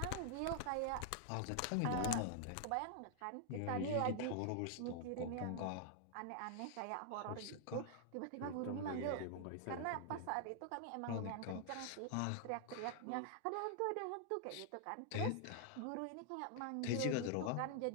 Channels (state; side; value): different; both; correlation 0.00